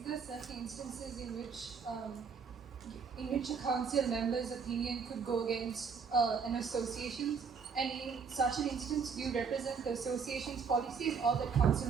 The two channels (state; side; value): quieter; left; 5.8 dB